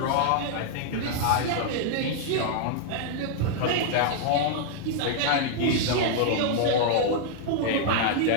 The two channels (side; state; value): both; different; correlation -0.01